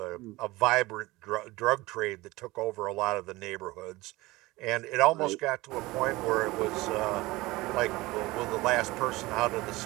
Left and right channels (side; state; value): left; quieter; 20.4 dB